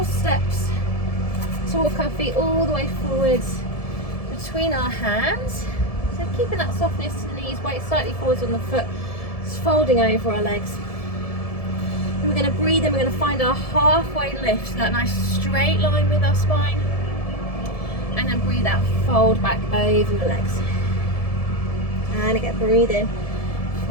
steps to walk our feet all the way forwards between our hands. So keeping that softness to the knees, weight slightly forwards on the foot, just folding over our legs. And we're going to breathe in, we're going to find our halfway lift, so that nice straight line with our spine. And then breathe out, fold back over your legs. And again, breathe in.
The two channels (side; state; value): right; late; 1.7 ms